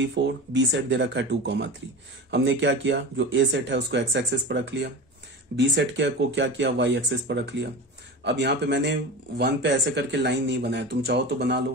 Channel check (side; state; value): both; normal; correlation 0.29